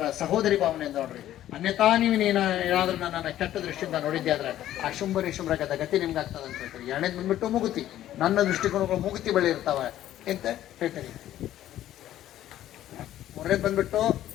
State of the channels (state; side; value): quieter; right; 12.8 dB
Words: ಸಹೋದರಿ ಭಾವನೆಯಿಂದ ನೋಡ್ರಿ. ಅನ್ಯತಾ ನೀವು ಏನಾದ್ರೂ ನನ್ನ ಕೆಟ್ಟ ದೃಷ್ಟಿಯಿಂದ ನೋಡಿದ್ದೆ ಆದ್ರೆ ಆ ಶುಂಭರಿ ಶುಭ್ರಗದ ಗತಿ ನಿಮ್ಗೆ ಆಗ್ತದೆ ಅಂತ ಹೇಳ್ತಾರೆ. 2ನೇದು ಬಂದ್ಬಿಟ್ಟು ಮೂಗುತಿ. ನನ್ನ ದೃಷ್ಟಿಕೋನಗಳು ಮೂಗುತಿ ಬಳಿ ಇರ್ತಾವ ಅಂತ ಹೇಳ್ತಾರೆ. 3ನೇದು ಬಂದ್ಬಿಟ್ಟು